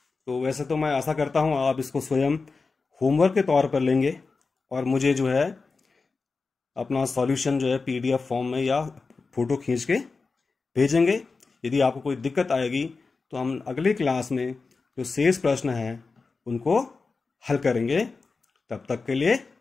तो वैसे तो मैं आशा करता हूँ आप इसको स्वयं होमवर्क के तौर पर लेंगे और मुझे जो है अपना सॉल्यूशन जो है PDF फॉर्म में या फ़ोटो खींच के भेजेंगे। यदि आपको कोई दिक्कत आएगी तो हम अगली क्लास में जो शेष प्रश्न हैं उनको हल करेंगे। तब तक के लिए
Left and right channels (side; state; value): right; quieter; 4.3 dB